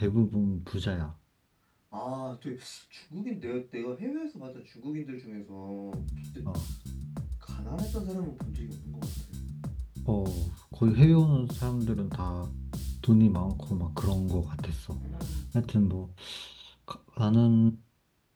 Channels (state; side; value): identical; both; correlation 1.00